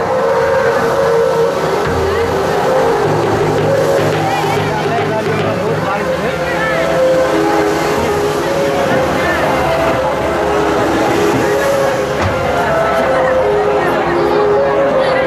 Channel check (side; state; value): both; identical; correlation 1.00